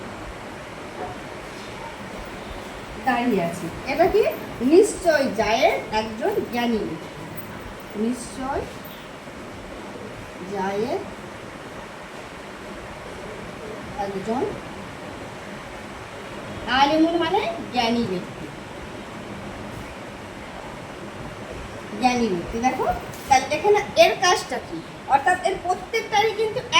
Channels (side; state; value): both; identical; correlation 1.00